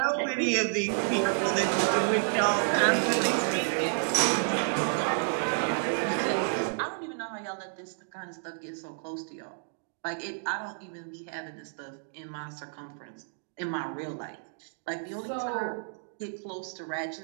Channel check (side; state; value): left; silent; digital silence